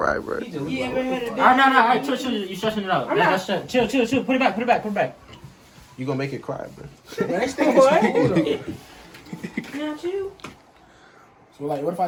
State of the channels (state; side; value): identical; both; correlation 1.00